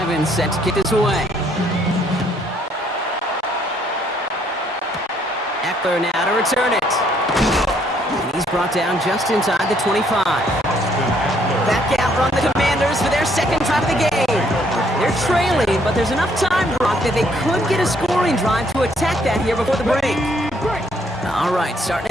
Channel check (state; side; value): normal; both; correlation 0.68